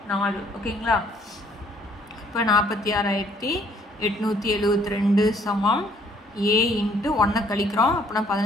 4. ஓகேங்களா? இப்போ 46,872 சமம் A × 1 கழிக்கிறோம். அப்படின்னா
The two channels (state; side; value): normal; both; correlation 0.62